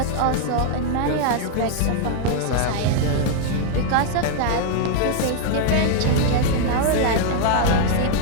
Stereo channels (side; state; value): both; different; correlation 0.00